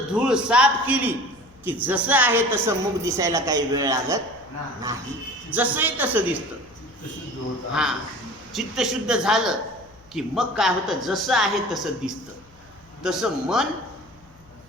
धूळ साफ केली की जसं आहे तसं मुख दिसायला काही वेळ लागत नाही, जसंही तसं दिसतं. हा, चित्त शुद्ध झालं की मग काय होतं, जसं आहे तसं दिसतं. तसं मन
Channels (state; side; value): noise; left; hum, 27 dB below the sound